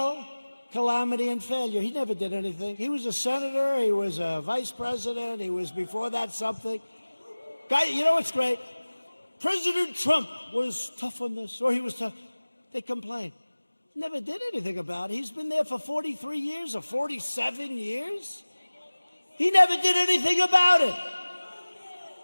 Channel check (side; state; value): both; inverted; correlation -1.00